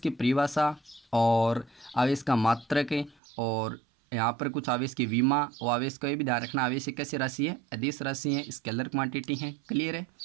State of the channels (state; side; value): drops out; left; at 3.2 s